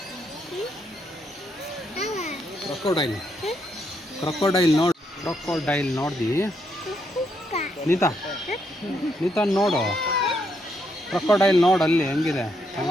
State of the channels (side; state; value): both; normal; correlation 0.77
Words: ಕ್ರೊಕೊಡೈಲ್ ನೋಡು ಕ್ರೊಕೊಡೈಲ್ ನೋಡ್ದಿ ನೀತಾ ನೋಡು, ಕ್ರೊಕೊಡೈಲ್ ನೋಡು ಅಲ್ಲಿ ಹೆಂಗಿದೆ